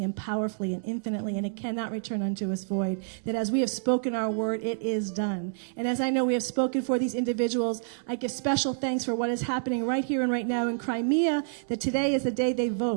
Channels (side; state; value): left; silent; digital silence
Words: and powerfully and infinitely, and it cannot return unto us void. That as we have spoken our word, it is done. And as I know we have spoken for these individuals, I give special thanks for what is happening right here and right now in Crimea, that today is the day they